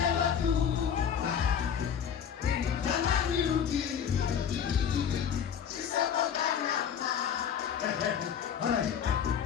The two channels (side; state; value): right; quieter; 8.1 dB